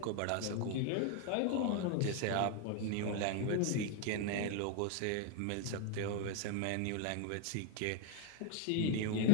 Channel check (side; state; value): both; different; correlation 0.01